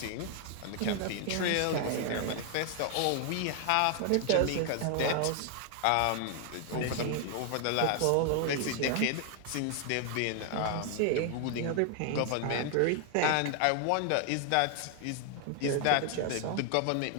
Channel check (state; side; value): different; both; correlation 0.00